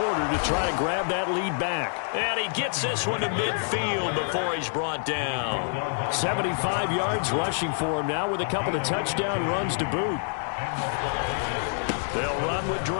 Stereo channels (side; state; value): right; silent; digital silence